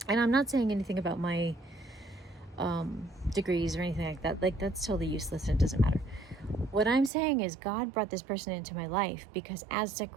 and I'm not saying anything about my degrees or anything like that. Like, that's totally useless and it doesn't matter. What I'm saying is God brought this person into my life because as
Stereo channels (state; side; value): drops out; left; at 7.1 s